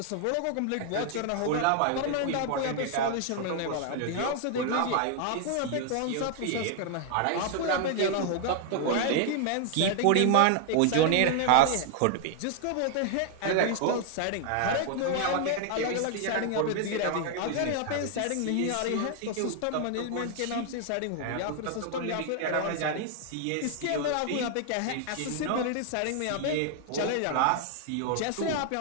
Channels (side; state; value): both; different; correlation 0.00